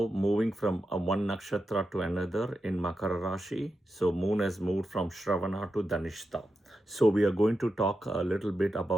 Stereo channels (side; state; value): both; normal; correlation 0.88